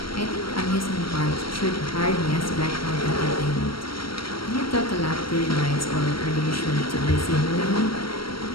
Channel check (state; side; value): late; right; 0.74 ms